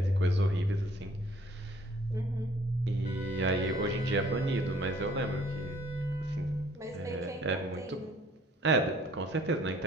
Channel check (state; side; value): normal; both; correlation 0.58